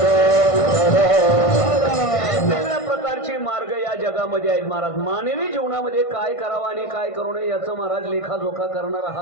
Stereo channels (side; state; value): right; late; 1.5 ms